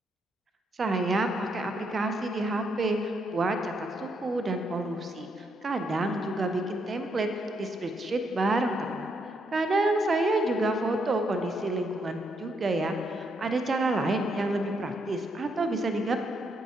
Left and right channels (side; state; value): both; normal; correlation 0.76